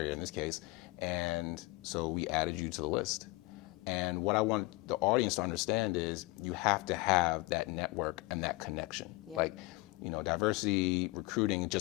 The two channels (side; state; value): right; quieter; 22.5 dB